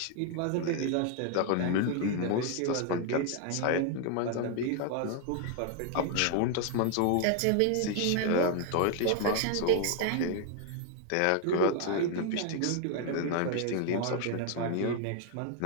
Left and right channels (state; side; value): different; both; correlation 0.00